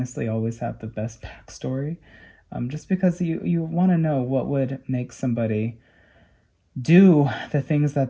always have the best backstory. Just because you want to know what would make somebody do the things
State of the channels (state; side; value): identical; both; correlation 1.00